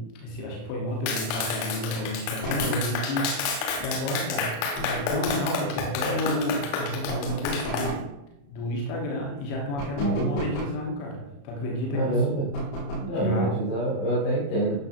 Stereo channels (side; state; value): right; late; 35 ms